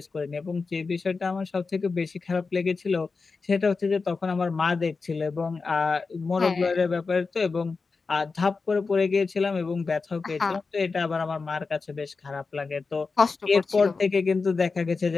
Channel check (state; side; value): quieter; right; 4.4 dB